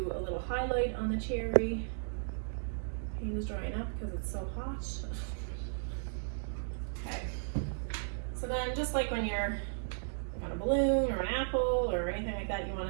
a little highlight on the cherry. Paint is drying up because it's so hot. Okay. So then, just like when you're on a balloon or an apple or anything like that, you want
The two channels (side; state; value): left; silent; digital silence